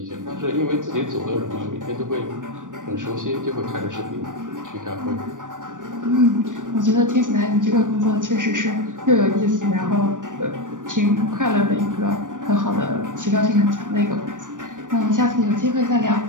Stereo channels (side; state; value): left; late; 0.87 ms